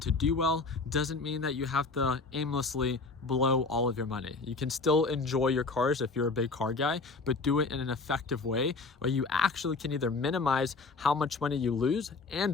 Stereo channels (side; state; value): right; quieter; 3.9 dB